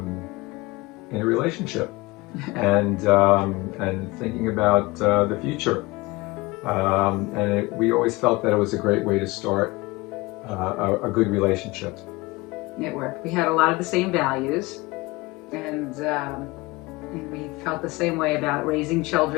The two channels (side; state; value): right; quieter; 22.6 dB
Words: a relationship and thinking about the future. We always felt that it was a great way to start a good relationship. It worked. We had a lot of the same values, and we felt the same way about raising